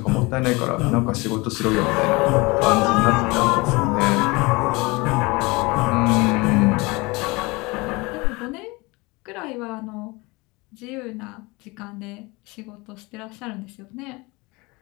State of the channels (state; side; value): quieter; right; 24.7 dB